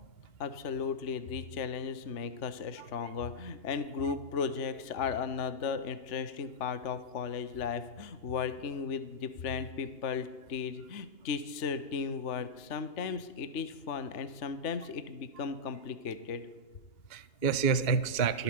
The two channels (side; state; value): right; late; 2.8 ms